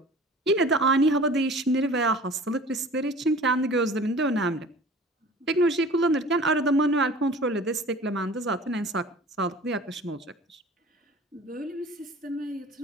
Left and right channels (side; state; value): both; normal; correlation 0.43